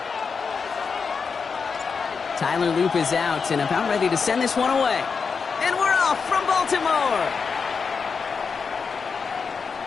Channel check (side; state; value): right; quieter; 5.4 dB